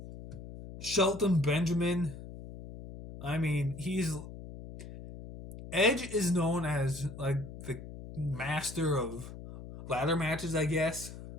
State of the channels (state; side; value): noise; left; hum, 13 dB below the sound